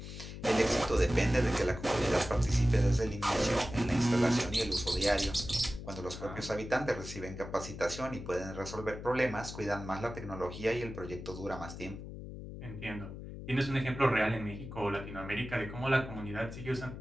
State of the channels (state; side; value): noise; left; hum, 10 dB below the sound